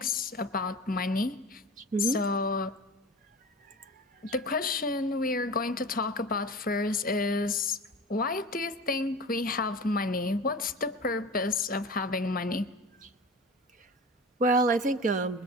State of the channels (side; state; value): both; normal; correlation 0.34